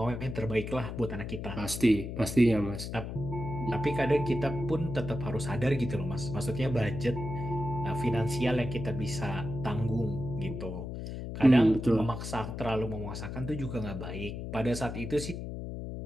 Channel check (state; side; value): noise; left; hum, 7 dB below the sound